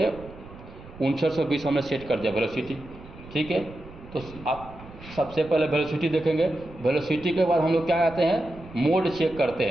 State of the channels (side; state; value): right; noise; rumble, 18 dB below the sound